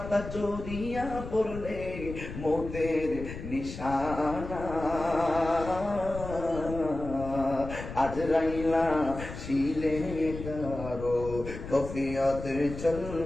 জড়িয়া পড়লে মৌতের নিশানা। আজরাইলা শিলে কারো কফিয়ত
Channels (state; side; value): noise; left; rumble, 10 dB below the sound